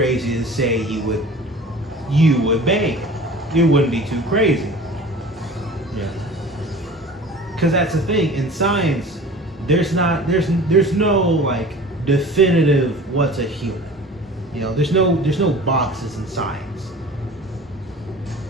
to say you would bang it. It wouldn't be too crazy. Yeah. Because that's the thing in science. There's no like definitive what's a human. You know, there's no boxes in science.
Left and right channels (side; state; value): both; normal; correlation 0.42